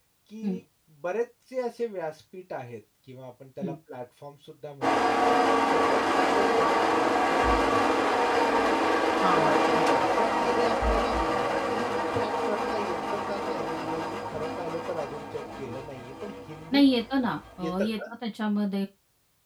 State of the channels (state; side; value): identical; both; correlation 1.00